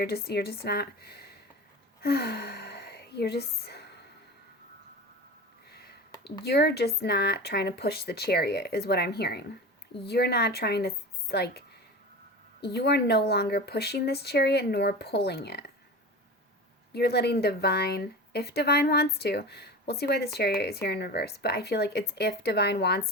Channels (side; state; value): both; normal; correlation 0.31